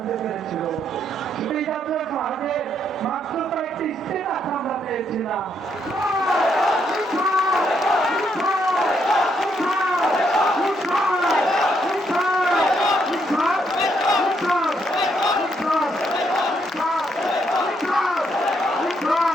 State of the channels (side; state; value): both; normal; correlation 0.75